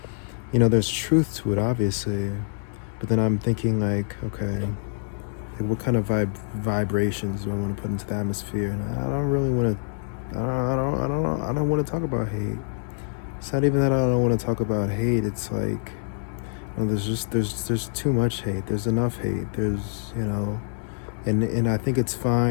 There's truth to it, obviously, but then I'm thinking, like, okay, what kind of vibrations do I want to put into the atmosphere? And I don't really want to. I don't want to talk about hate. It's not even that I don't want to talk about hate. It's like, there's too much hate. There's enough hate. There's and I think it's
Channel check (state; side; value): silent; right; 61 dB below the other